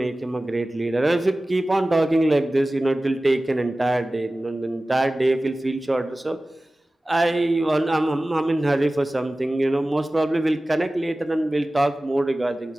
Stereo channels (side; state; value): both; normal; correlation 0.97